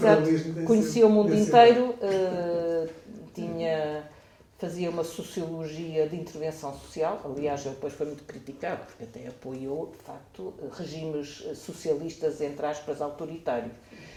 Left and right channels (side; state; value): both; identical; correlation 1.00